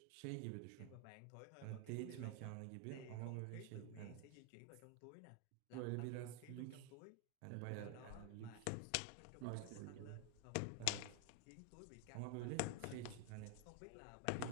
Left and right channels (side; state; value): both; different; correlation 0.01